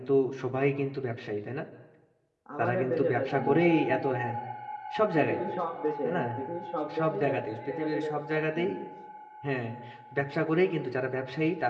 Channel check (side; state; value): both; identical; correlation 1.00